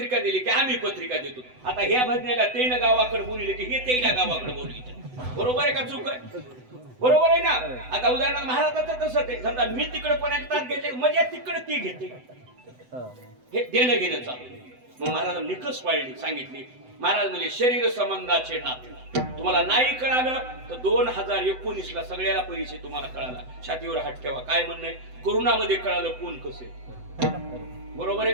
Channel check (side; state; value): left; late; 7.9 ms